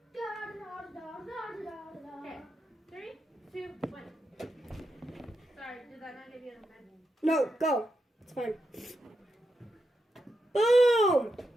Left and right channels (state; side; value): normal; both; correlation 0.85